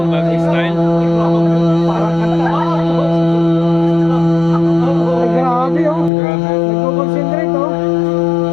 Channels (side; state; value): right; drops out; at 6.1 s